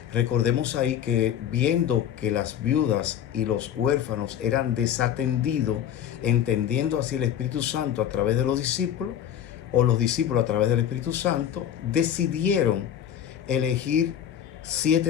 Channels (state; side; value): quieter; right; 9.9 dB